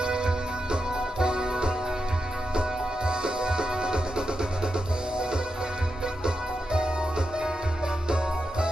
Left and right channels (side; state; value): both; normal; correlation 0.87